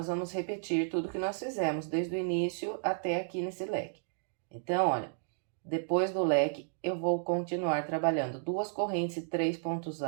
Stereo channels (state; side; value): silent; left; digital silence